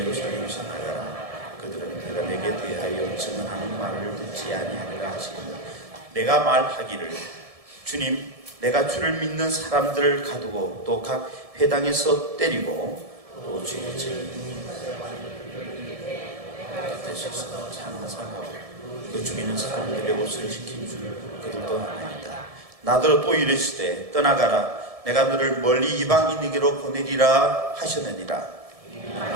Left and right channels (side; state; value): left; late; 1.7 ms